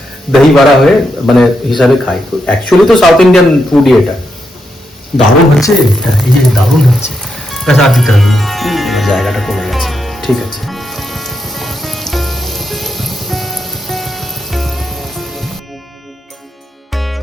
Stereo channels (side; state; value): both; normal; correlation 0.83